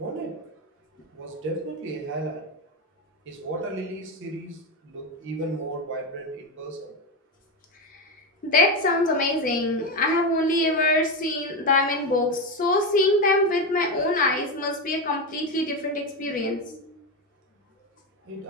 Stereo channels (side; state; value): both; normal; correlation 0.14